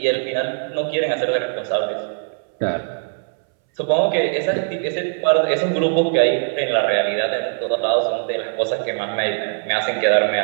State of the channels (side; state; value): left; silent; 65 dB below the other